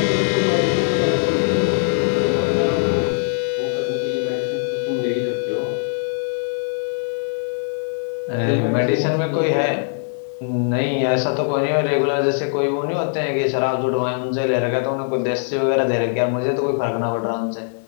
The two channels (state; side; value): silent; right; digital silence